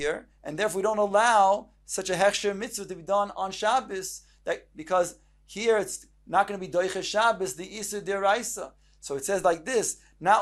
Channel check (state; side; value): identical; both; correlation 1.00